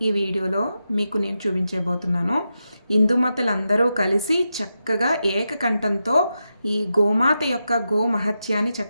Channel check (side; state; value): both; inverted; correlation -0.88